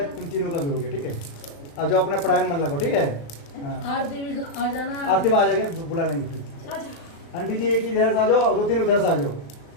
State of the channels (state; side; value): late; right; 36 ms